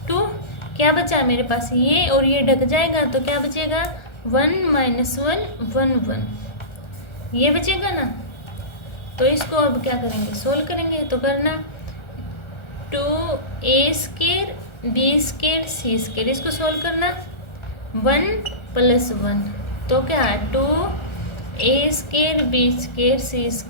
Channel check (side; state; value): right; late; 1.3 ms